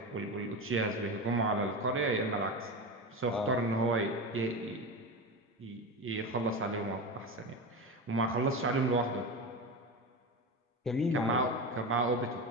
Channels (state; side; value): normal; both; correlation 0.22